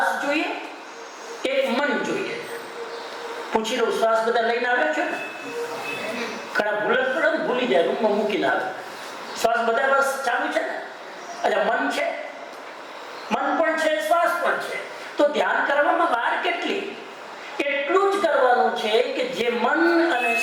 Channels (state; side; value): identical; both; correlation 1.00